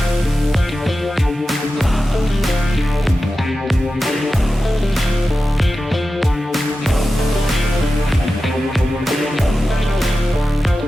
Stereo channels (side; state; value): both; normal; correlation 0.93